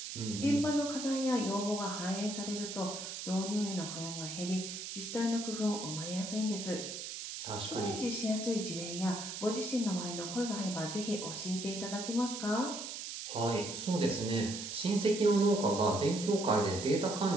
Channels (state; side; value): noise; right; hiss, 7 dB below the sound